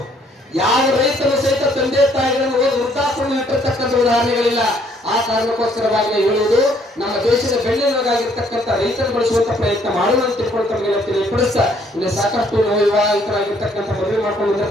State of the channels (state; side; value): normal; both; correlation 0.65